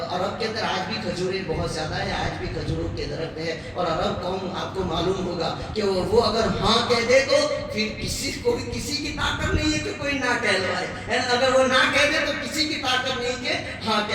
عرب کے اندر آج بھی کھجوریں بہت زیادہ ہے، آج بھی کھجوروں کے درخت ہے، اور عرب قوم آپ کو معلوم ہوگا کہ وہ اگر ہاں کہہ دے تو پھر کسی کی طاقت نہیں ہے کہ کوئی نہ کہلوائے، اگر وہ نہ کہہ دے تو کسی کی طاقت نہیں کہ ہاں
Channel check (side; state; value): both; identical; correlation 1.00